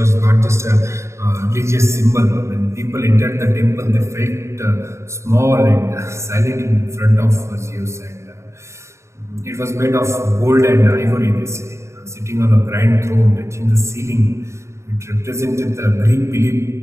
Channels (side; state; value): left; late; 0.14 ms